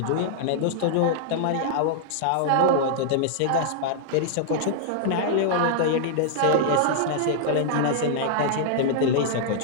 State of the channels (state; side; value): different; both; correlation -0.01